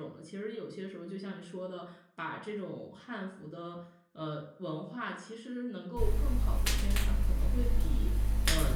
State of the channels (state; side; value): identical; both; correlation 1.00